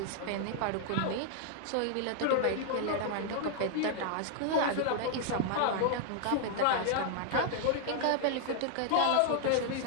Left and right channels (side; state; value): both; different; correlation 0.00